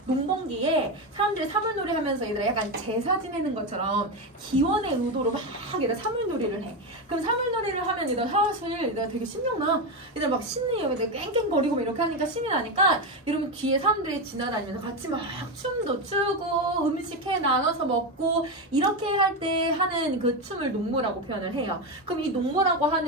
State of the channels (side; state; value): both; normal; correlation 0.13